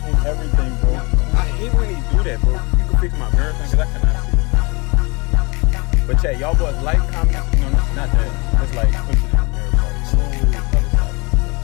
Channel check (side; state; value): right; quieter; 27.3 dB